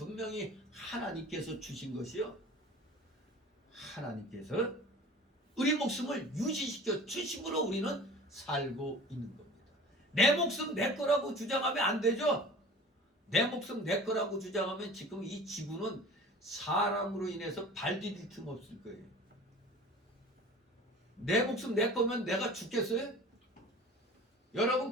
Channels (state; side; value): normal; both; correlation 0.42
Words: 하나님께서 주신 것이요, 하나님께서 우리 목숨을 유지시켜 주심으로 우리는 살고 있는 겁니다. 내 목숨 내 거라고 주장하면 안 되죠. 내 목숨 내 거라고 주장하면 지금 이 지구는 사람으로 인해서 발 디딜 틈 없을 거예요. 내 목숨 내 거면 내가 죽겠어요? 여러분